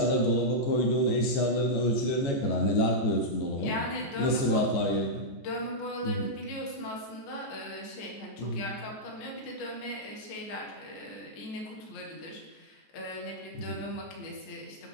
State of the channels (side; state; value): right; late; 14 ms